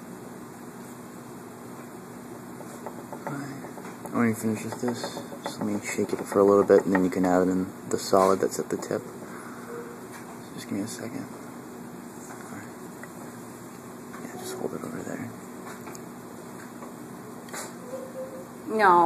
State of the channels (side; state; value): both; identical; correlation 1.00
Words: When you finish with this, just let me shake it for a little bit, and then you can add in the solid that's at the tip. Just give me a second. Right. Yeah, just hold it over there.